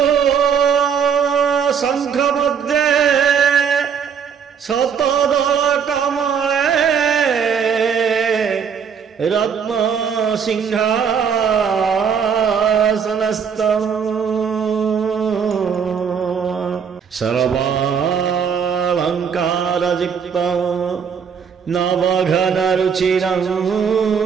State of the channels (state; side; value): quieter; left; 7.0 dB